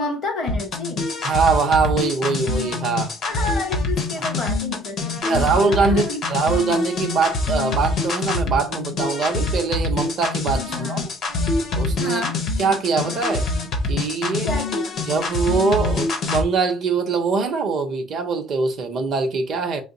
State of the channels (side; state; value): both; normal; correlation 0.56